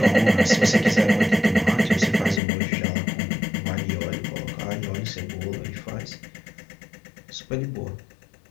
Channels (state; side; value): drops out; right; at 2.4 s